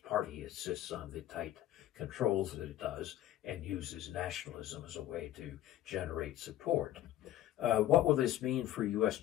Party insists on the tight controls that it does and uses nationalism as a way to generate support. What will this mean for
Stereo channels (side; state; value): right; quieter; 13.1 dB